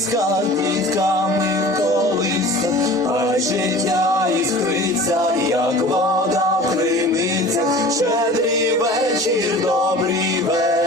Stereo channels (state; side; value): normal; both; correlation 0.41